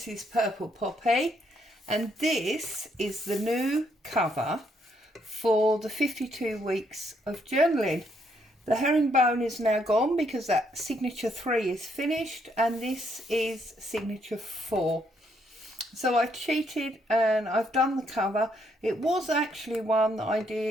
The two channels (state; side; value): normal; both; correlation 0.73